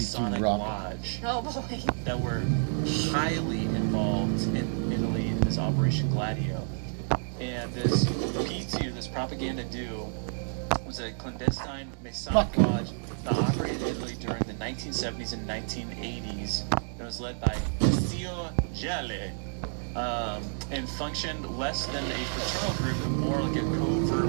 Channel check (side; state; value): left; silent; digital silence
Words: Rock. Lodge, Oh boy. that were highly involved in Italy in this Operation Gladio. And this P2, this Propaganda Dude, was a clandestine Masonic lodge that operated in Italy during the 1970s and 1980s. It was led by Zio Gelli, and functioned less than a fraternal group, but more like a